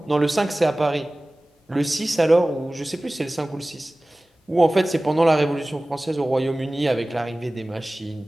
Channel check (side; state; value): both; normal; correlation 0.98